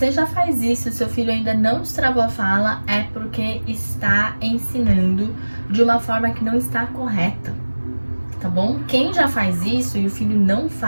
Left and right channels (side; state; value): both; inverted; correlation -1.00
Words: já faz isso e seu filho ainda não destravou a fala, é porque está ensinando de uma forma que não está correta, tá bom? Quem já faz isso e o filho não